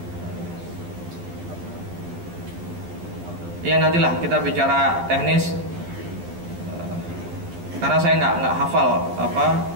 Ya nantilah kita bicara teknis, karena saya nggak hafal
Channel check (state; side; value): late; left; 12 ms